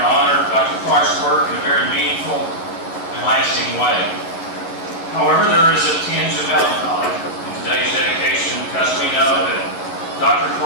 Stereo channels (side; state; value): right; late; 11 ms